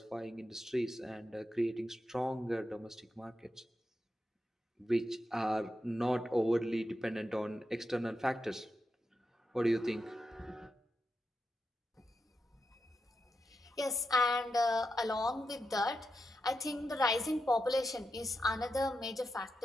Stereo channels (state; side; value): normal; both; correlation 0.87